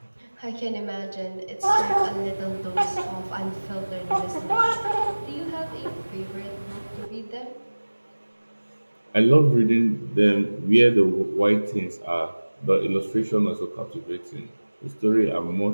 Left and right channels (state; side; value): inverted; both; correlation -1.00